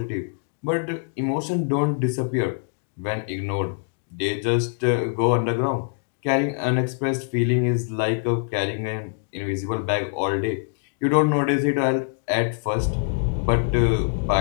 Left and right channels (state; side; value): silent; right; digital silence